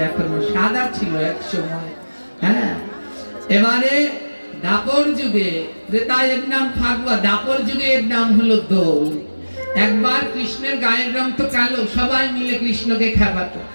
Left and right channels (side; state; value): both; inverted; correlation -1.00